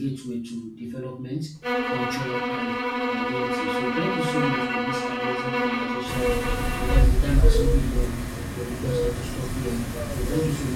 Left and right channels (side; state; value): both; identical; correlation 1.00